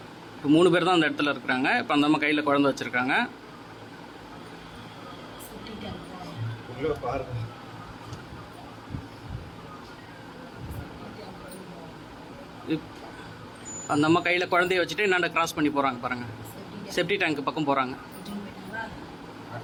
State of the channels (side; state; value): both; identical; correlation 1.00